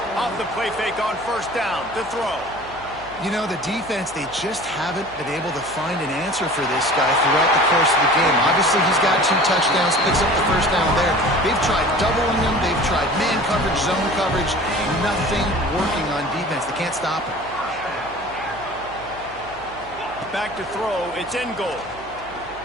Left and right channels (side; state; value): right; noise; hum, 21 dB below the sound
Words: Off the play fake on 1st down to throw. You know, the defense, they just haven't been able to find an answer for this guy throughout the course of the game. Obviously, he's got 2 touchdowns, picks up the 1st down there. They've tried doubling him. They've tried man coverage, zone coverage. Nothing working on defense. They can't stop him. Back to throw. It's in goal.